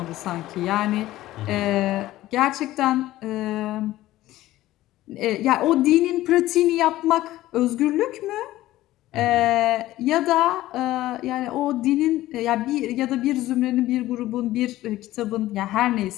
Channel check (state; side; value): quieter; right; 15.7 dB